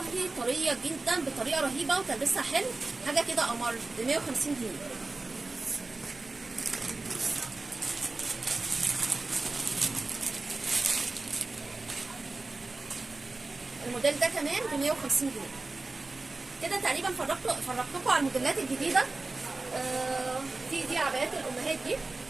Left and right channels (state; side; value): quieter; left; 3.4 dB